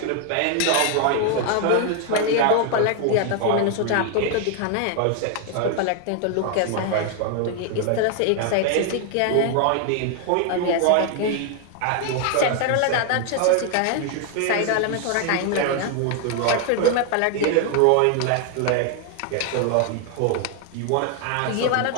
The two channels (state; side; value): different; both; correlation 0.01